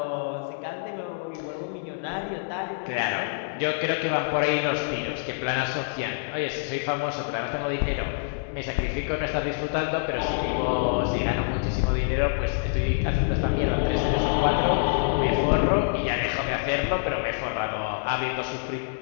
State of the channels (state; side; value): silent; right; 61 dB below the other